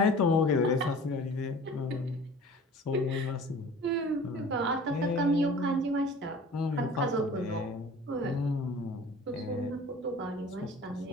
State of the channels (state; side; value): normal; both; correlation 0.44